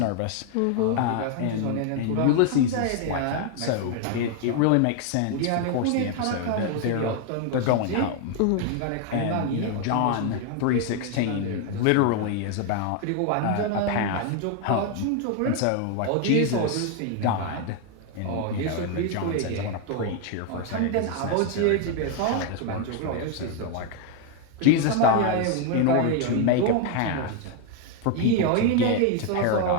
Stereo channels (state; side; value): different; both; correlation 0.01